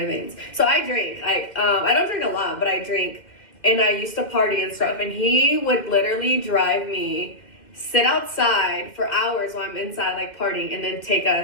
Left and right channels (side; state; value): right; late; 2.1 ms